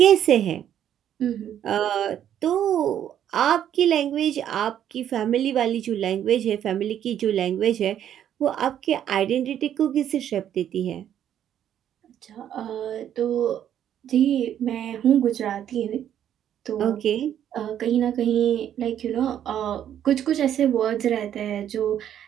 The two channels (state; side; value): quieter; left; 10.2 dB